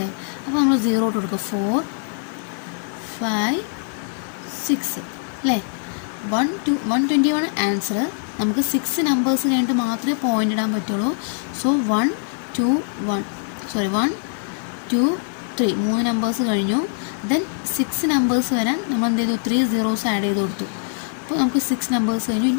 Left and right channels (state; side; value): silent; right; 58 dB below the other